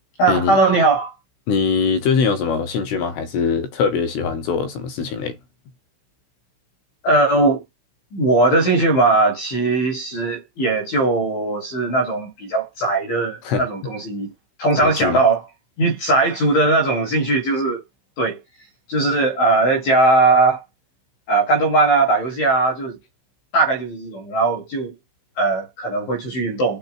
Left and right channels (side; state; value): right; late; 16 ms